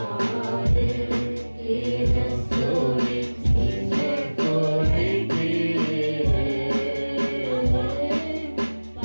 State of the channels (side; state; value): both; inverted; correlation -1.00